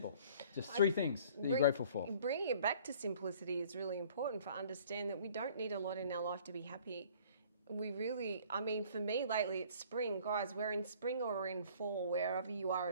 Just 3 things that you're grateful for. Bringing it back to simplicity is really important, for understand that we don't need a lot in our life to be happy. We really, for me lately, it's spring. Guys, we're in spring or we're in fall, wherever you are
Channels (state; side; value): inverted; both; correlation -0.53